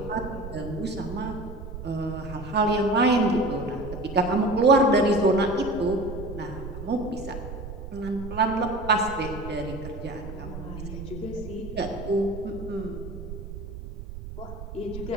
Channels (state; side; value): noise; right; rumble, 10 dB below the sound